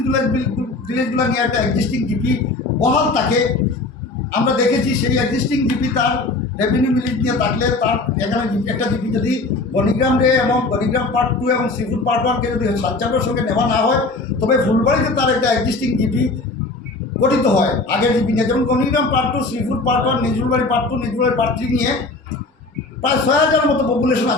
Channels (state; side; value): quieter; right; 3.4 dB